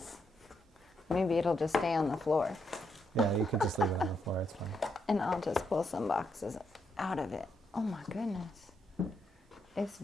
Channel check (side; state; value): both; normal; correlation 0.79